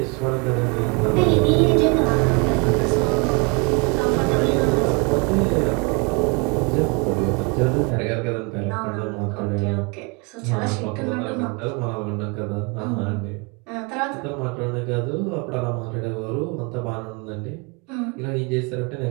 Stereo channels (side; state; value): left; quieter; 31.2 dB